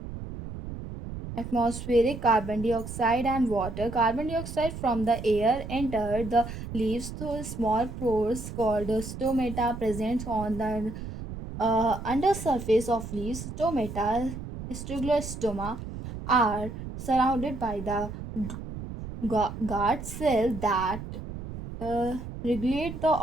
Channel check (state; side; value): noise; right; rumble, 9 dB below the sound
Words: atmospheric carbon dioxide and water. Carbon dioxide from the air enter the leaves through small pores called stomata present on the undersurface of leaves. Stomata, stoma, are surrounded by the guard cell that regulate the